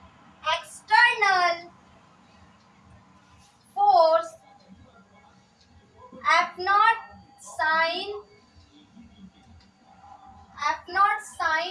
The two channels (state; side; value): identical; both; correlation 1.00